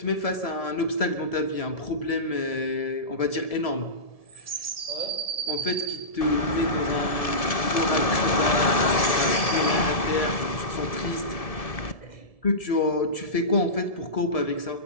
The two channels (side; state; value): right; late; 1.7 ms